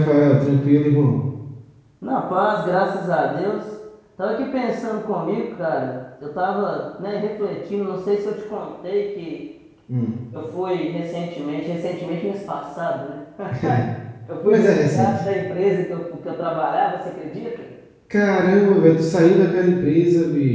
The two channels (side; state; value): both; identical; correlation 1.00